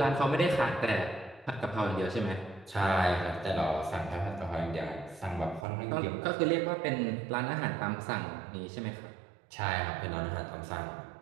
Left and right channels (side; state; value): left; drops out; at 5.7 s